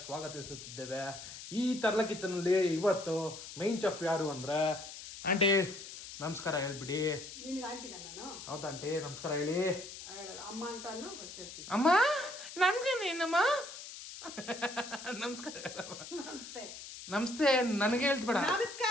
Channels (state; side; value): noise; left; hiss, 12 dB below the sound